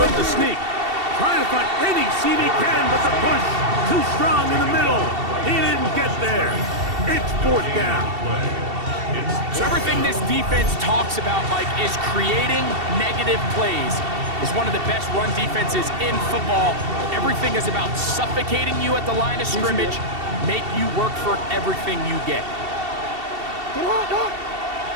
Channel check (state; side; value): late; left; 2.7 ms